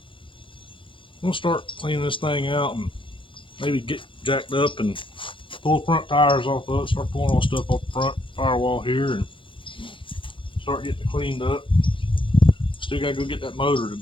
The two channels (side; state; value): right; late; 0.25 ms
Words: gonna start cleaning this thing out and maybe get jacked up and pull the front tires off of it, start pulling all stuff off the front firewall here and start getting it cleaned up. Still gotta go get that motor